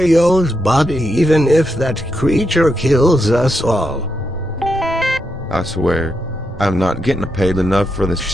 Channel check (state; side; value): normal; both; correlation 0.82